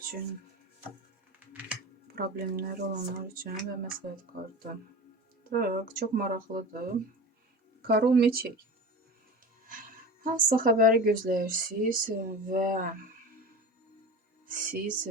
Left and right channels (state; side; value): normal; both; correlation 0.32